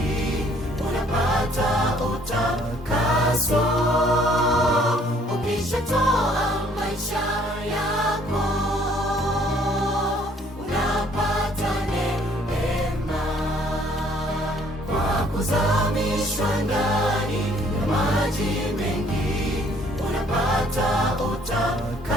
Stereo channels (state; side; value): normal; both; correlation 0.61